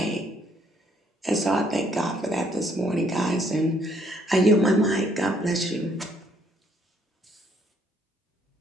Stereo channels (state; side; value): normal; both; correlation 0.67